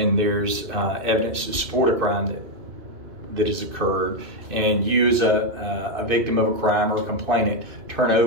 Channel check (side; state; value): left; late; 2.6 ms